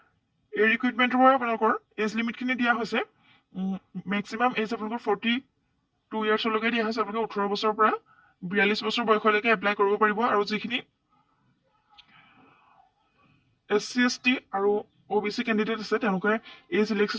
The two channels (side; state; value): both; identical; correlation 1.00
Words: এই ৰিক্ৰুইটমেণ্টৰ বাবে আপোনালোকৰ এজ লিমিটখিনি দিয়া হৈছে মেক্সিমাম এজ আপোনালোকৰ 42 ইয়াৰ্ছলৈকে দিয়া হৈছে। আপোনালোকে 18 বছৰৰ পৰা 42 বছৰ বয়সলৈকে এপ্লাই কৰিব পাৰিব। আৰু যিখিনি SC ST আৰু OBC কেণ্ডিডেট আছে তেওঁলোকে এজ